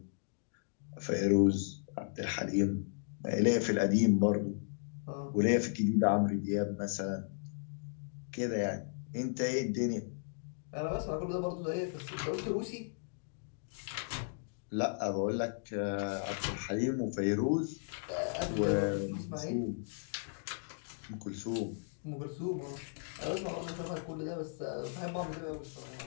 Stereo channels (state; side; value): silent; right; digital silence